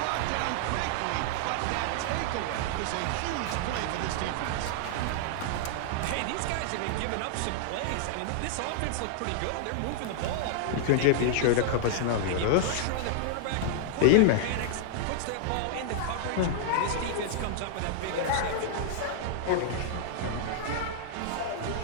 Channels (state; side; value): different; both; correlation -0.01